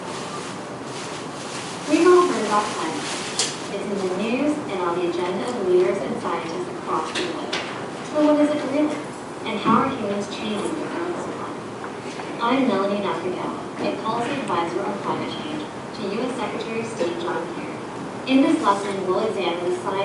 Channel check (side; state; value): both; identical; correlation 1.00